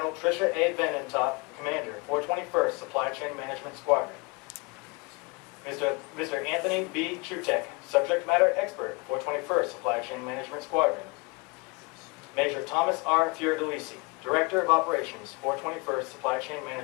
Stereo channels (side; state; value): right; quieter; 29.0 dB